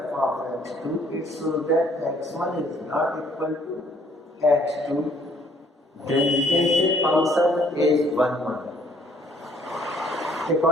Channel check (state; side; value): normal; both; correlation 0.63